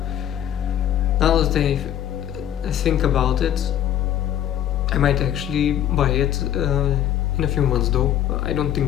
Now that I think about it, I might actually buy it in a few months, though. I don't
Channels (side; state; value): right; quieter; 11.0 dB